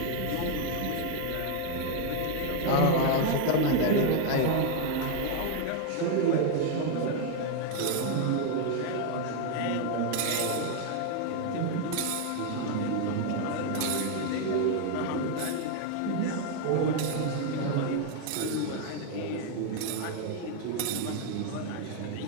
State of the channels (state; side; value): different; both; correlation 0.01